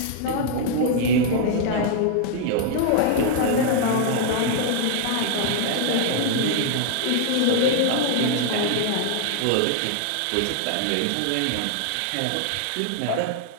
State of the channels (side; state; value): both; different; correlation 0.00